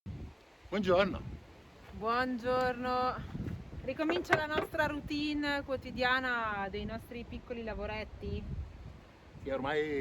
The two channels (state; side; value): identical; both; correlation 1.00